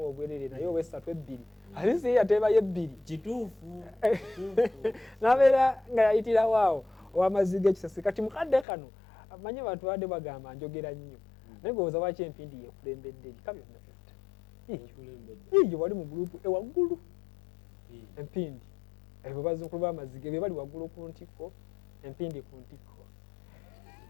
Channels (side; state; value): right; drops out; at 8.7 s